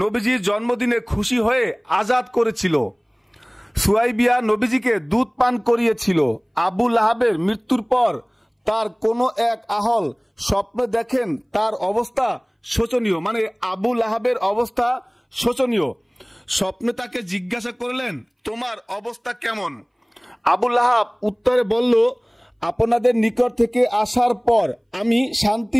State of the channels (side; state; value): both; identical; correlation 1.00